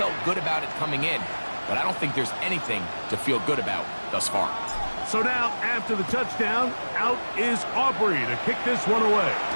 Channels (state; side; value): inverted; both; correlation -1.00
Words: good about it coming in, but I don't think there's anything to feel good about thus far. So now, after the touchdown, out is Aubrey to kick this one away.